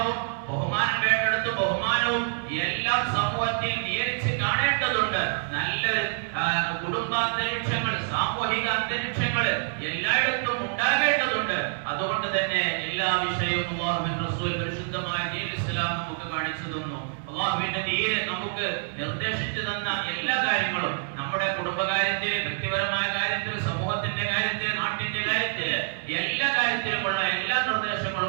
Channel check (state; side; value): silent; left; 58 dB below the other